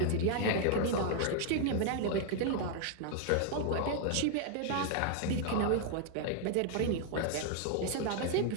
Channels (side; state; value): both; different; correlation 0.00